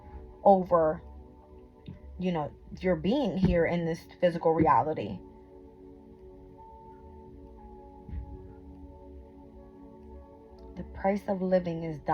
over, you know, your being here in this physical reality. The price of living is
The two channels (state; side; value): identical; both; correlation 1.00